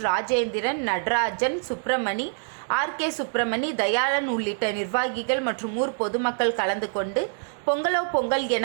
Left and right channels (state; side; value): silent; left; digital silence